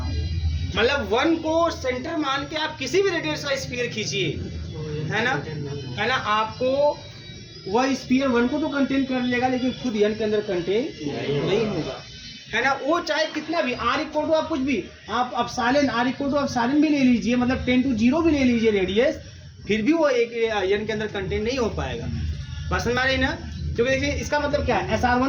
मतलब 1 को सेंटर मान के आप किसी भी रेडियस का स्फीयर खींचिए, है ना, आपको वह स्फीयर 1 को तो कंटेन कर लेगा, लेकिन खुद एन के अंदर कंटेन नहीं होगा, है ना। वो चाहे कितना भी आर इक्वल टू आप कुछ भी आप epsilon r equal to epsilon भी ले लीजिए, मतलब 10 to 0 भी ले लीजिए रेडियस, फिर भी वो एक एन के अंदर कंटेन नहीं हो पाएगा। बस समझ रही ना। क्योंकि देखिए इसका मतलब क्या है,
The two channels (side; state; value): both; identical; correlation 1.00